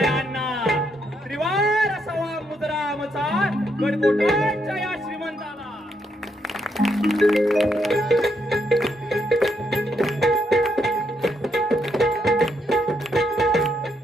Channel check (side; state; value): both; normal; correlation 0.77